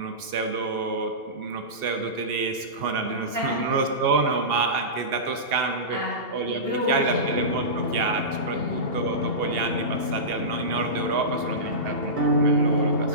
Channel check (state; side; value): late; left; 2.7 ms